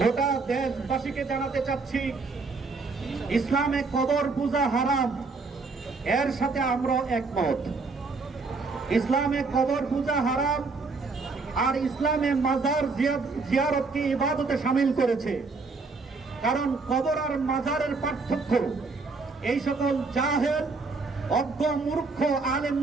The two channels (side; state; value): left; quieter; 4.1 dB